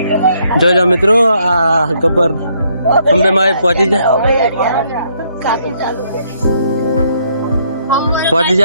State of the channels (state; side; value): inverted; both; correlation -0.71